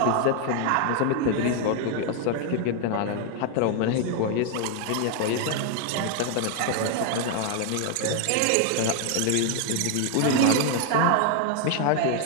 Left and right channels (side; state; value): both; different; correlation 0.00